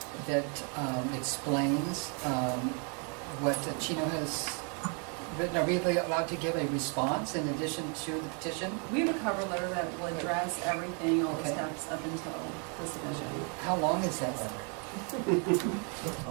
explains what Chino has written? Are we allowed to give a response in addition to the petition? We have a cover letter that will address everything, all the Okay. steps up until the submission. How long is that letter?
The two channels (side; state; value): left; quieter; 38.2 dB